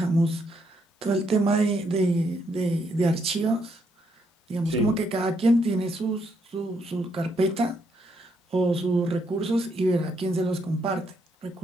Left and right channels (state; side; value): normal; both; correlation 0.75